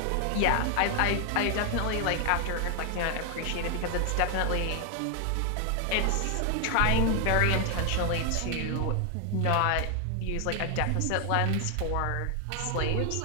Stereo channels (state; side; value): different; both; correlation 0.00